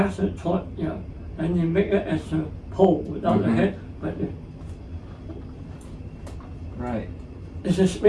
taught, and you make it as a pole without the head. But right. It's a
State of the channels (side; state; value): both; identical; correlation 1.00